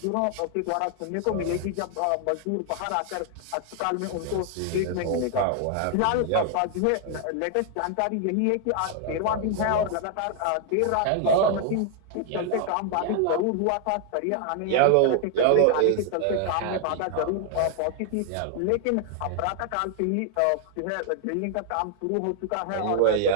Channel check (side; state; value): both; different; correlation 0.00